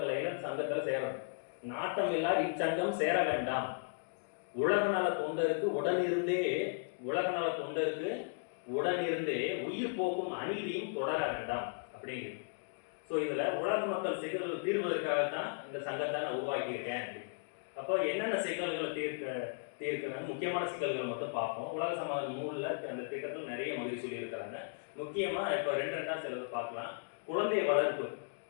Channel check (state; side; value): silent; right; digital silence